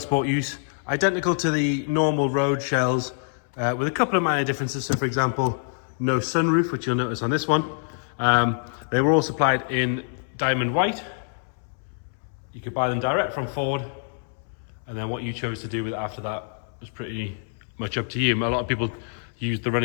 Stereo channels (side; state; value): right; silent; 61 dB below the other